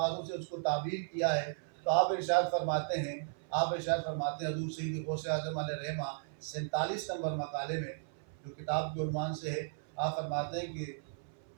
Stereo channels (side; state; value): left; silent; 54 dB below the other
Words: سے اس کو تعبیر کیا ہے۔ تو آپ ارشاد فرماتے ہیں حضور سید غوث اعظم علیہ رحمہ 47 نمبر مقالے میں جو کتاب کے عنوان سے ہے، آپ فرماتے ہیں کہ